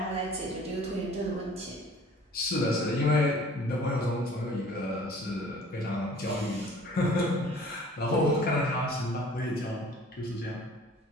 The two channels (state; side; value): normal; both; correlation 0.50